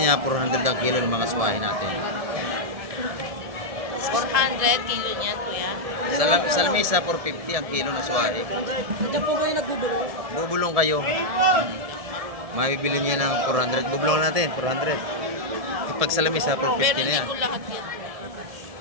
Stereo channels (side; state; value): left; late; 1.7 ms